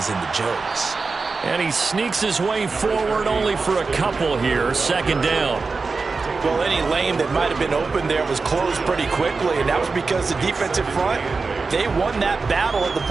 and the Joes. And he sneaks his way forward only for a couple here. Second down. Well, any lane that might have been open there was closed pretty quickly, and that was because the defensive front, they won that battle at the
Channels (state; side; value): quieter; left; 4.3 dB